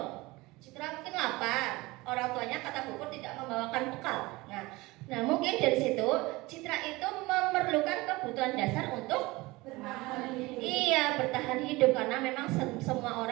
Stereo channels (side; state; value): left; quieter; 21.6 dB